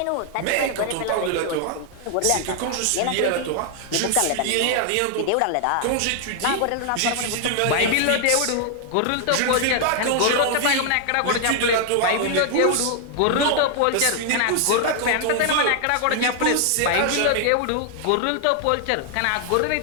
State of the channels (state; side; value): different; both; correlation 0.00